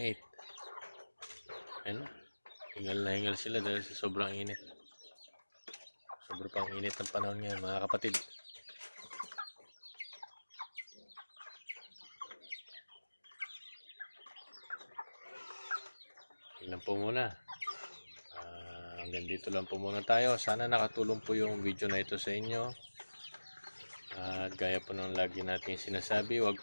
Ayun, hingal na hingal sila dahil sa sobrang init. Sobrang pang init ng panahon ngayon mga kapatid. Yun lang po muna. Hanggang dito lang po muna tayo. Sana nakatulong po yung video na ito sa inyo. At gaya po ng lagi natin sinasabi, huwag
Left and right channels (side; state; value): both; inverted; correlation -1.00